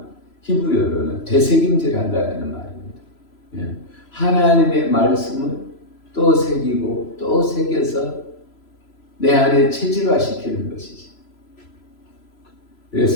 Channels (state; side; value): late; right; 3.0 ms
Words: 히브리어로는 되새김질한다라는 말입니다. 하나님의 말씀을 또 새기고 또 새겨서 내 안에 체질화시키는 것이지.